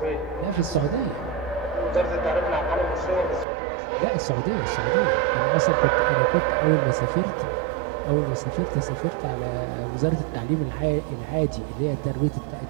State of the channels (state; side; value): drops out; left; at 3.5 s